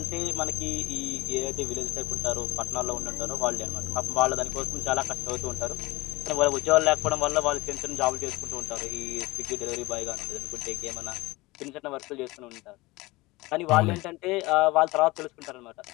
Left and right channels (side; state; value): right; quieter; 21.3 dB